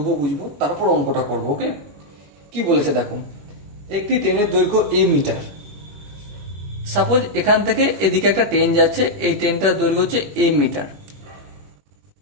বুঝবো, তারপর অঙ্কটা করবো। ওকে, কি বলেছে দেখো। একটি ট্রেনের দৈর্ঘ্য এ মিটার। সাপোজ এখান থেকে এদিকে একটা ট্রেন যাচ্ছে, এই ট্রেনটার দৈর্ঘ্য হচ্ছে এ মিটার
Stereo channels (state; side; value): late; left; 21 ms